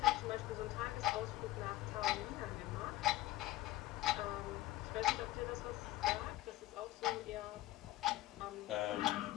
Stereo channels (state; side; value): quieter; right; 16.3 dB